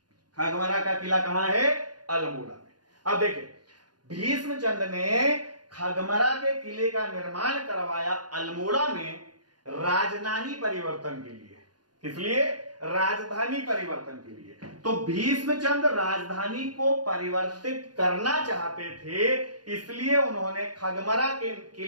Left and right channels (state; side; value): late; left; 0.70 ms